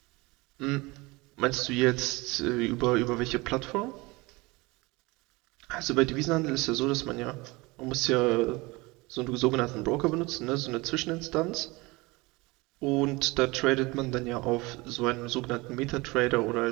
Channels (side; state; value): left; quieter; 23.8 dB